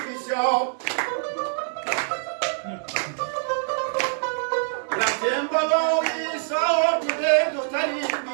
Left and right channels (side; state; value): left; silent; 62 dB below the other